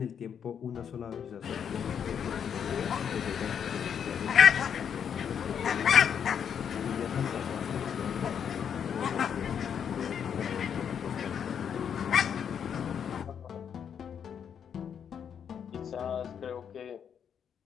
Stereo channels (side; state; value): right; quieter; 7.9 dB